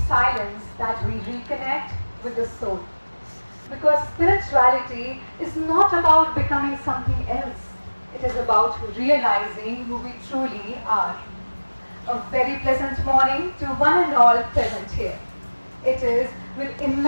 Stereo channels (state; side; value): inverted; both; correlation -1.00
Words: silence that we reconnect with the soul. Because spirituality is not about becoming something else. It is about realizing who we truly are. A very pleasant morning to one and all present here. It is with